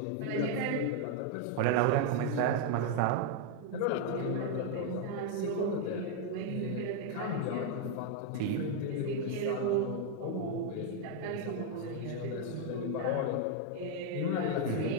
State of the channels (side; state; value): both; different; correlation 0.00